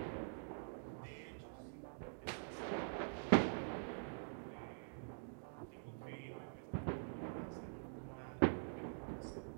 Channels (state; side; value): silent; left; digital silence